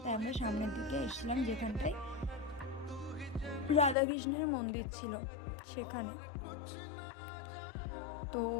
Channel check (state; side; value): drops out; right; at 4.0 s